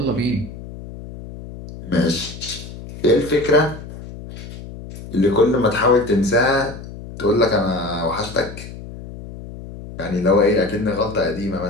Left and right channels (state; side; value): noise; left; hum, 13 dB below the sound